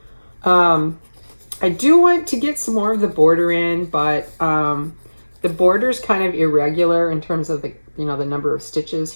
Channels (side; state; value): both; inverted; correlation -1.00